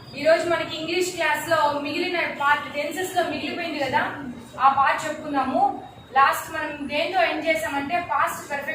English class లో మిగిలిన పార్ట్ టెన్సెస్ లో మిగిలిపోయింది కదా, ఆ పార్ట్ చెప్పుకుందాము. లాస్ట్ మనం దేంతో ఎండ్ చేసామంటే పాస్ట్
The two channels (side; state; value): both; identical; correlation 1.00